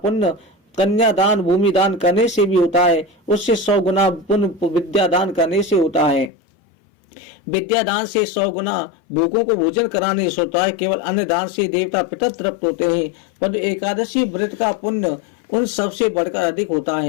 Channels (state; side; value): drops out; right; at 6.3 s